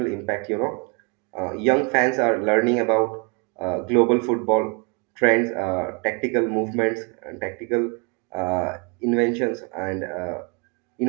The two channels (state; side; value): quieter; left; 32.9 dB